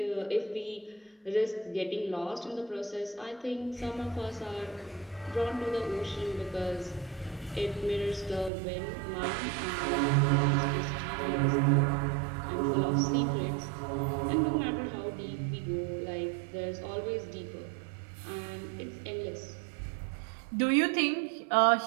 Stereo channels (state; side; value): drops out; left; at 8.5 s